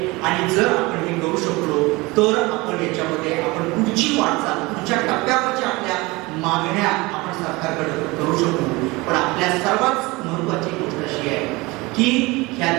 आणि जर आपण हे करू शकलो तर आपण याच्यामध्ये आपण पुढची वाटचाल, पुढच्या टप्प्यावरच्या आपल्या मागण्या आपण सरकारकडे करू शकतो. पण आपल्या सर्वात महत्वाची गोष्ट अशी आहे की ह्या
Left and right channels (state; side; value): quieter; left; 23.1 dB